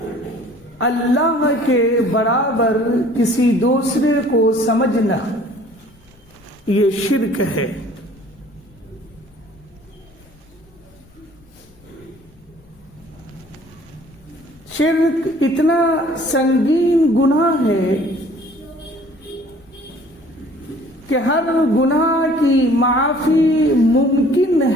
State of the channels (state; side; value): noise; left; rumble, 28 dB below the sound